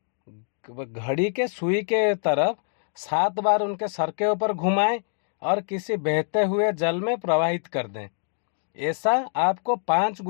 घड़ी के सुई के तरफ 7 बार उनके सर के ऊपर घुमाएं और किसी बहते हुए जल में प्रवाहित कर दें। ऐसा आपको 5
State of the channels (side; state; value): right; silent; 62 dB below the other